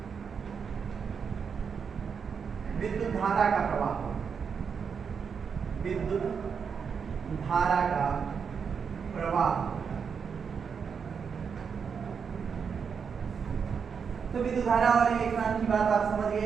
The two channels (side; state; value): left; quieter; 6.4 dB